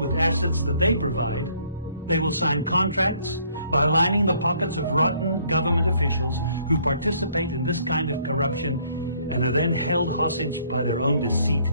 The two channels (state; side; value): inverted; both; correlation -0.63